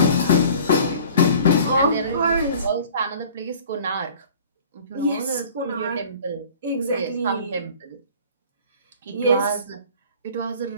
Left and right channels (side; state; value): both; inverted; correlation -0.47